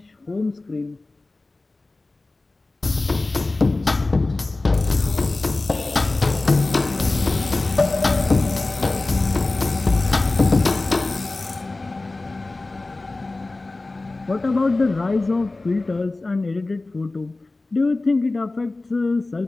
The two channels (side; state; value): right; quieter; 3.2 dB